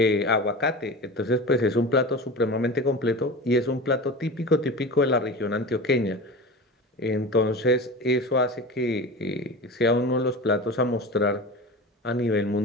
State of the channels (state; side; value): normal; both; correlation 0.31